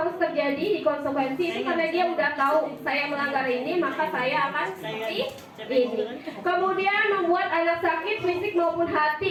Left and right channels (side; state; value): both; identical; correlation 1.00